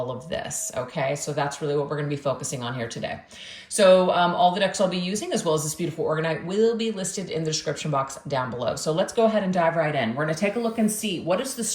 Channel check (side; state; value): both; identical; correlation 1.00